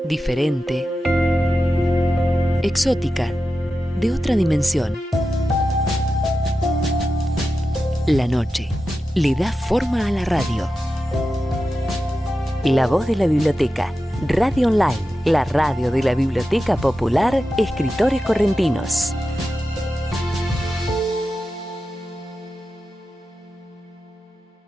Diferente, exótica, de otra dimensión. La noche le da forma a la radio. La voz de la biblioteca, Radio Online, la radio de la Biblioteca Popular, Escritores Correntinos.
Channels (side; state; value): both; normal; correlation 0.91